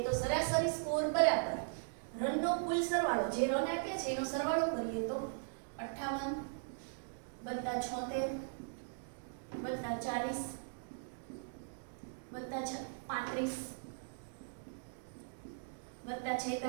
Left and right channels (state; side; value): silent; left; digital silence